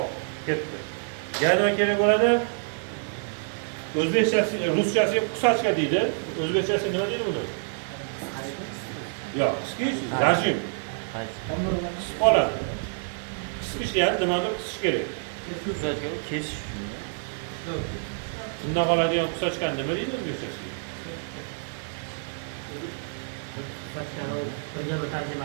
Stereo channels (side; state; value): left; silent; digital silence